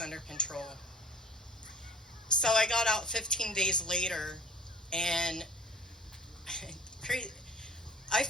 under control. So I got out 15 days later, and I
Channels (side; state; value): both; normal; correlation 0.47